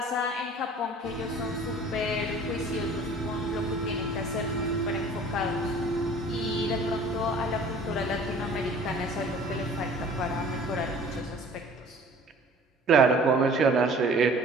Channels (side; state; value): both; normal; correlation 0.48